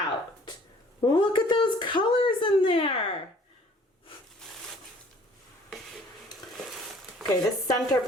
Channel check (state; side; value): normal; both; correlation 0.55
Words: Look at those colors in there. Okay, this center